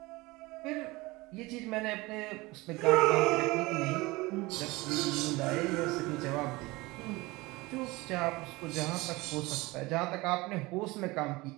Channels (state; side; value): quieter; left; 22.0 dB